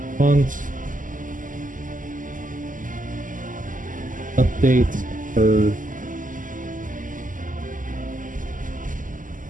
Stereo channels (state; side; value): late; left; 0.38 ms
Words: font, updates per